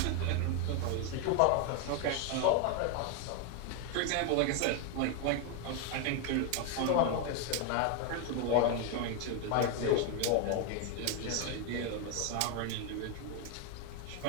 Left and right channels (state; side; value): different; both; correlation 0.01